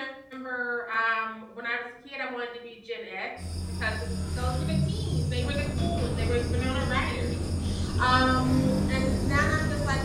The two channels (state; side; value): identical; both; correlation 1.00